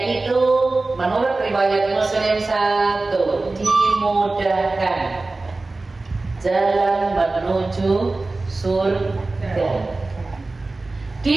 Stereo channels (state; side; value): quieter; left; 3.3 dB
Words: menurut riwayat Muslim 1, dimudahkan jalan menuju surga.